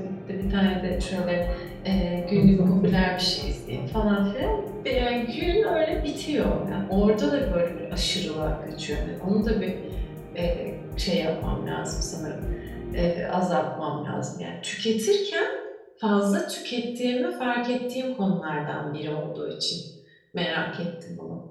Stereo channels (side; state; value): both; identical; correlation 1.00